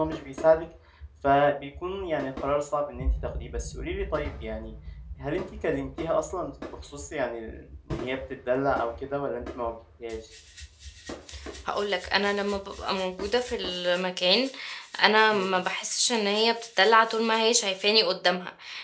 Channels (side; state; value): both; identical; correlation 1.00